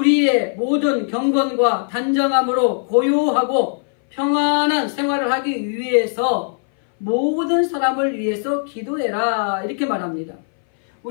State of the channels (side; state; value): right; silent; 61 dB below the other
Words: 모든 경건과 단정함으로 고요하고 평안한 생활을 하기 위해서 모든 사람을 위해서 기도해라 이렇게 말합니다.